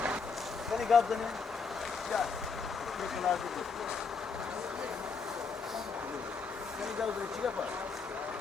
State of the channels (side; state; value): right; quieter; 5.1 dB